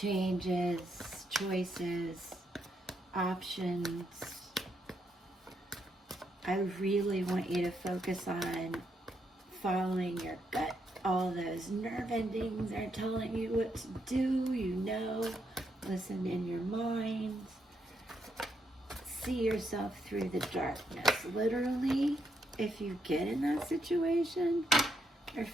choices, options. I really want you to focus on following your gut. All those nerve endings are telling you what to do, listen in your mind. See yourself through the darkness. Literally, if you get in that situation, or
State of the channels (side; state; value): both; normal; correlation 0.78